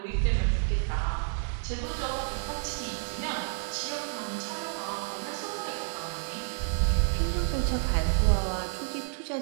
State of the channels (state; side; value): silent; left; digital silence